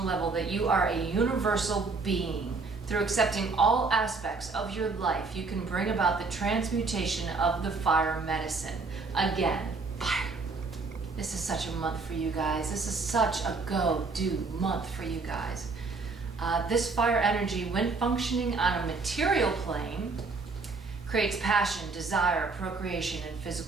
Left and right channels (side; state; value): left; quieter; 4.1 dB